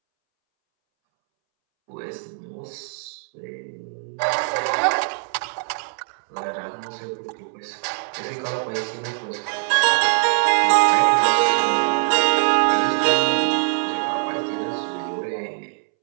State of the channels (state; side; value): silent; left; 64 dB below the other